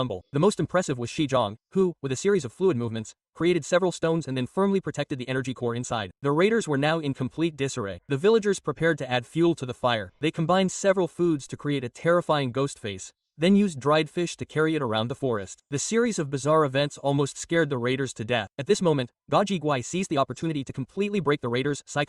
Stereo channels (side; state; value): both; identical; correlation 1.00